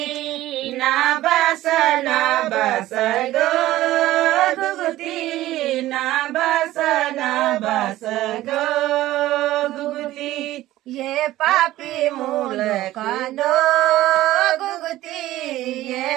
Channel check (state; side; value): quieter; left; 15.5 dB